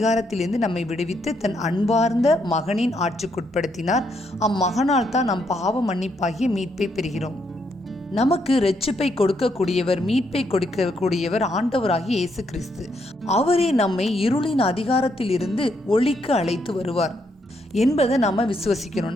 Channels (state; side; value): normal; both; correlation 0.76